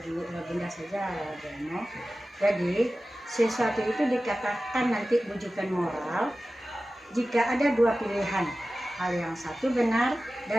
benda saja Bu Emo. Jadi sesuatu itu dikatakan nanti bujukan moral jika ada dua pilihan, hal yang satu benar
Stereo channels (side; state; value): both; normal; correlation 0.95